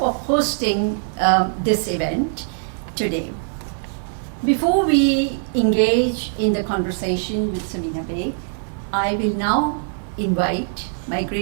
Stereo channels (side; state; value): left; silent; 59 dB below the other